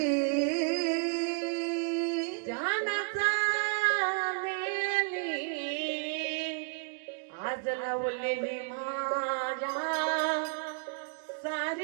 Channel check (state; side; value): quieter; left; 38.3 dB